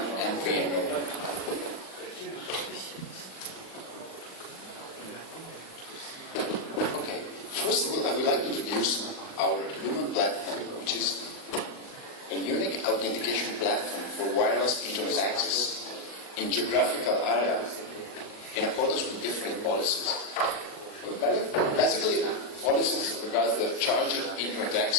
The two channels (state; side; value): late; right; 40 ms